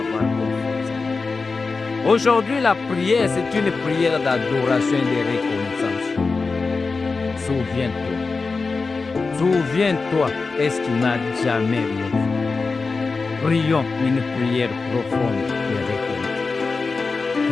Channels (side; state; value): right; quieter; 4.2 dB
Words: confiance? Aujourd'hui, la prière, c'est une prière d'adoration et de reconnaissance. Souviens-toi. Souviens-toi, est-ce qu'il n'a jamais rien fait? Prions une prière profonde de reconnaissance.